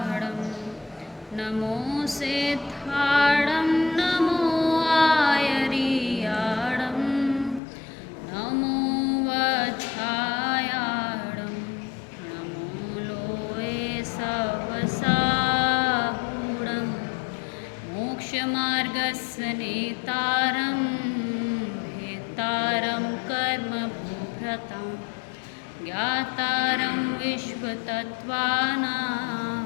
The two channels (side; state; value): right; drops out; at 7.6 s